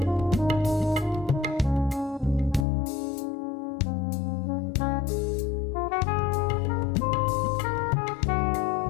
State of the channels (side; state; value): right; drops out; at 2.7 s